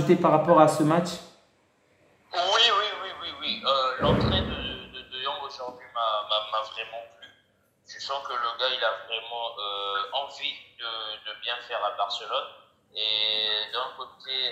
par rapport à ce match? L'entrée de Jong aujourd'hui m'a vraiment plu. Je sens que le gars, il a vraiment envie de bien faire à Barcelone. Et d'un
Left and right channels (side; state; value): both; identical; correlation 1.00